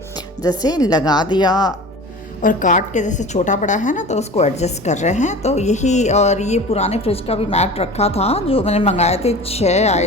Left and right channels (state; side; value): normal; both; correlation 0.37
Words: जैसे लगा दिया और काट के जैसे छोटा बड़ा है ना, तो उसको एडजस्ट कर रहे हैं। तो यही, और ये पुराने फ्रिज का भी मैट रखा था जो मैंने मंगाए थे, 6